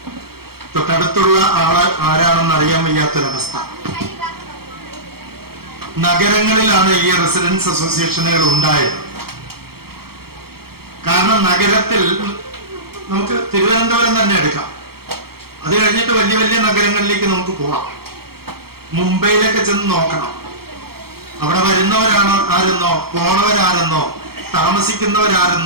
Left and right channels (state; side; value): late; left; 0.95 ms